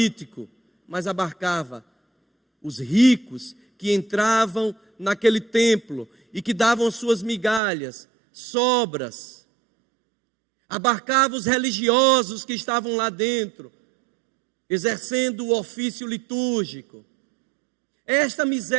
mas abarcava os ricos que entravam naquele templo e que davam suas migalhas, sobras. Abarcava os religiosos que estavam lá dentro, exercendo o ofício litúrgico. Esta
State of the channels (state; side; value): drops out; left; at 7.6 s